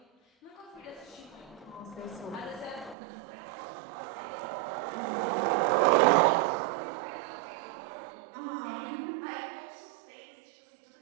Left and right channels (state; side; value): drops out; left; at 3.0 s